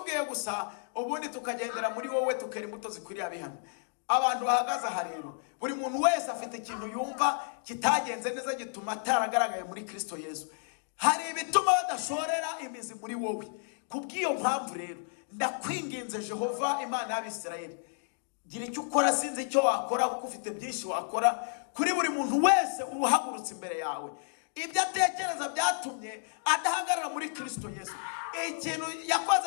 gusa, ubundi tukagendera muri wowe, tukera imbuto zikwiriye abihano. Abantu bahagaze aha rero, buri muntu wese afite ikintu yumva kitagenze neza gituma ataragaragaye muri Kristo Yesu. Hari ibituma badashorera imizi muri wowe. Kubw'iyo mpamvu rero ndakwinginze Jehova Imana y'Abisirayeli, gira icyo ukora. Sinzi icyo wakora kuko ufite byinshi wakora kuri buri muntu wese uhagurutse imbere yawe. Ibyo atekereza byatumye adahagarara muri Kristo Yesu. Ikintu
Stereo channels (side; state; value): right; silent; digital silence